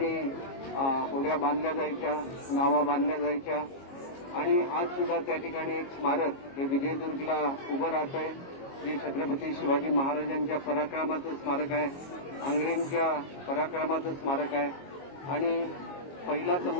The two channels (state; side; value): late; right; 22 ms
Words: होड्या बांधल्या जायच्या, नावा बांधल्या जायच्या आणि आज सुद्धा त्या ठिकाणी एक स्मारक हे विजयदुर्गला उभं राहत आहे, जे छत्रपती शिवाजी महाराजांच्या पराक्रमाचं स्मारक आहे, अंग्रेजांच्या पराक्रमाचं स्मारक आहे. आणि पहिला